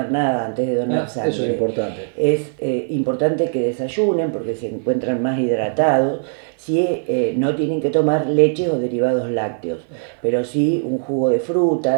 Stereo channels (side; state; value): left; silent; 57 dB below the other